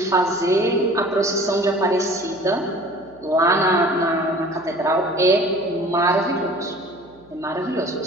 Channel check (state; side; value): noise; right; hum, 29 dB below the sound